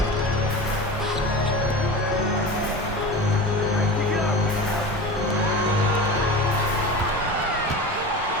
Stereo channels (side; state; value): both; normal; correlation 0.30